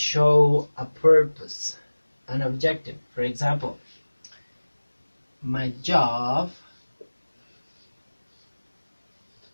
a purpose, an objective, for example, my job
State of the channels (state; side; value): inverted; both; correlation -1.00